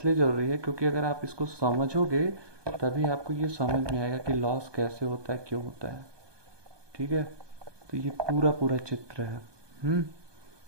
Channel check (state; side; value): late; left; 1.2 ms